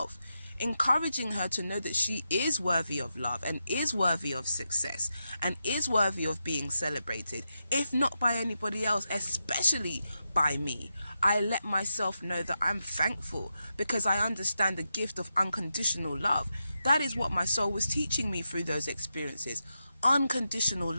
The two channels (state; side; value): inverted; both; correlation -0.88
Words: encouraging her to know that she is worthy of love and is worthy of success and is worthy of being celebrated, if not by anybody else, especially by me. I let myself know that I'm thankful because I understand the gift of unconditional love. That is what my soul was teaching me through those experiences, unconditional